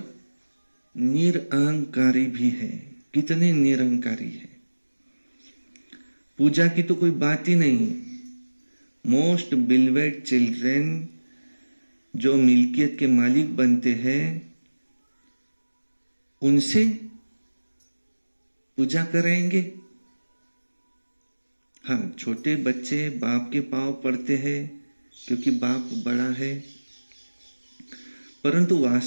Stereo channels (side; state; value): both; inverted; correlation -1.00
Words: निरअहंकारी भी है। कितने निरअहंकारी है, पूजा की तो कोई बात ही नहीं। मोस्ट बिलवेड चिल्ड्रन, जो मिल्कियत के मालिक बनते हैं, उनसे पूजा करेंगे। हाँ, छोटे बच्चे बाप के पांव पड़ते हैं क्योंकि बाप बड़ा है, परंतु